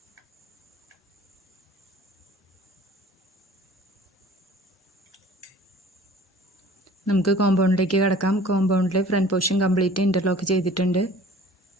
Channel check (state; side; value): normal; both; correlation 0.48